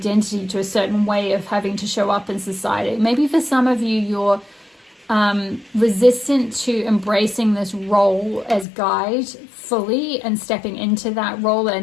to a certain way of having to show up in society. Maybe for some of you, you're resistant to embracing this role as guide fully and stepping into that role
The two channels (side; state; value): right; drops out; at 8.7 s